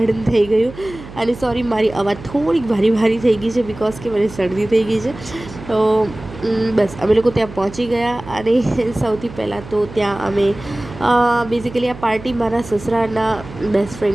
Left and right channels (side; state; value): right; noise; hum, 15 dB below the sound